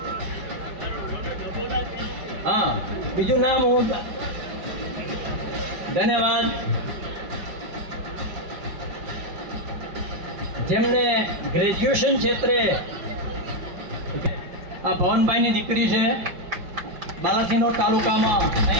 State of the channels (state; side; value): late; left; 5.7 ms